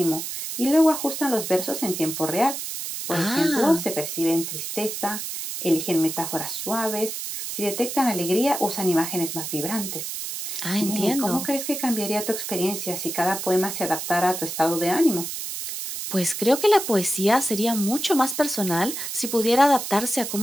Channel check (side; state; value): right; noise; hiss, 6 dB below the sound